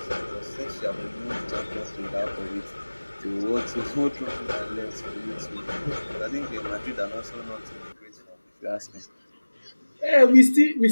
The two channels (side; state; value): both; inverted; correlation -1.00